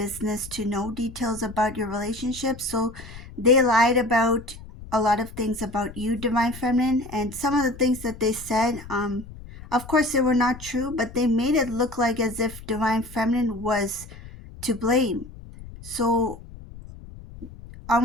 to know details about your relationship, so they lied about a lot of things about you, Divine Feminine. And some of the things that they said, of course they were not true, but they made it look like as if Divine Feminine was to blame. So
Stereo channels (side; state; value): left; noise; rumble, 16 dB below the sound